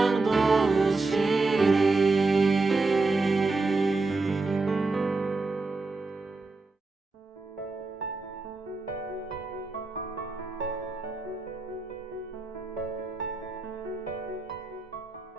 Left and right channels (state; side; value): quieter; left; 3.6 dB